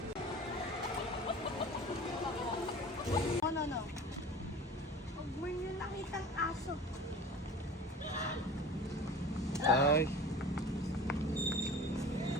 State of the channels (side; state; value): both; normal; correlation 0.39